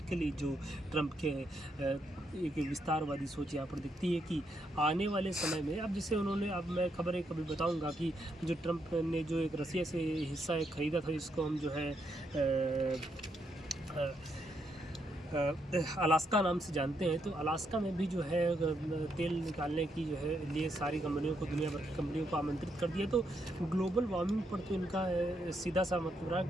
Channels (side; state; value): both; normal; correlation 0.78